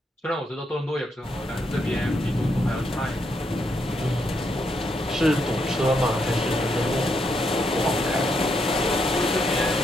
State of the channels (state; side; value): normal; both; correlation 0.78